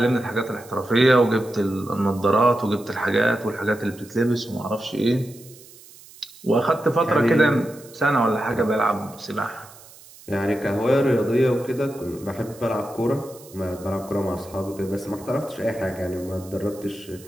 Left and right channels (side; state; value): right; noise; hiss, 21 dB below the sound